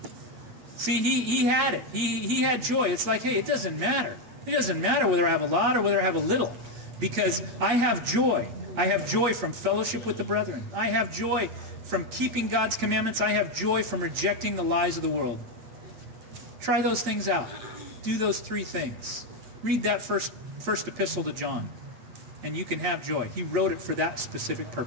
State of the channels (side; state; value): left; late; 8.9 ms